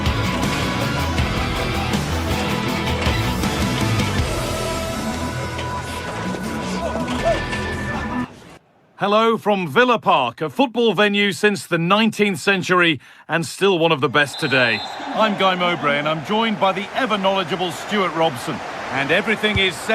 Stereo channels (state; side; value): identical; both; correlation 1.00